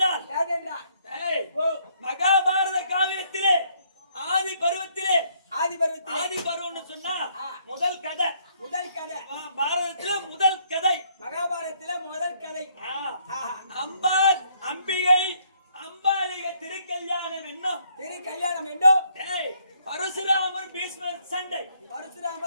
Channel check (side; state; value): both; inverted; correlation -0.68